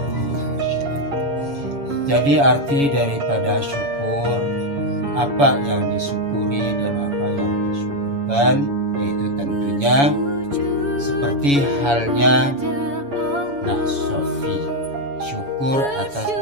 lasyadid. Jadi arti daripada syukur, apa yang disyukuri dan apa yang disyukurkan, yaitu tentunya seperti halnya Sofi, syukur atas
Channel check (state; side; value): late; left; 7.1 ms